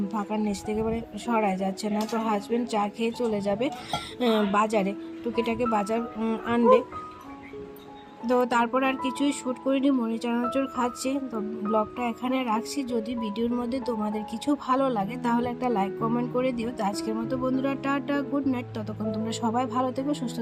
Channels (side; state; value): both; identical; correlation 1.00